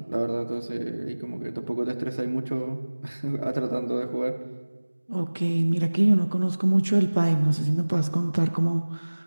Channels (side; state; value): both; inverted; correlation -1.00